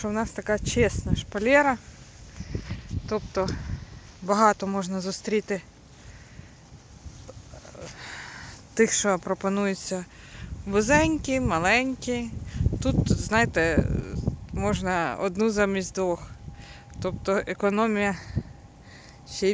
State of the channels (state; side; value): identical; both; correlation 1.00